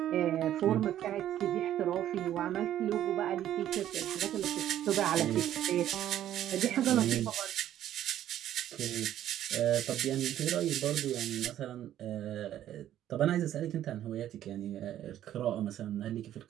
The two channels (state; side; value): quieter; left; 11.8 dB